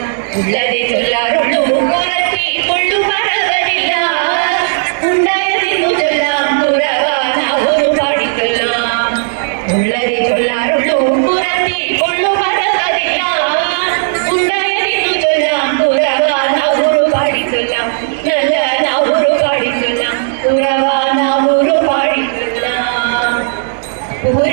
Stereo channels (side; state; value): left; silent; 71 dB below the other